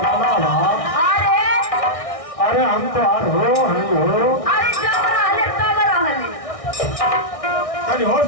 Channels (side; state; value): right; late; 1.6 ms